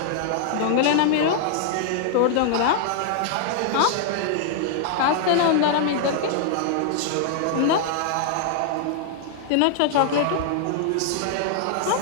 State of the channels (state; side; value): different; both; correlation -0.01